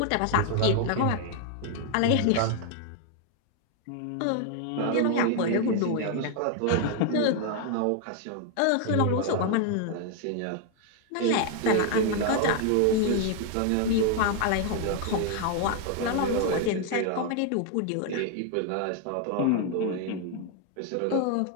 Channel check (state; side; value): different; both; correlation 0.00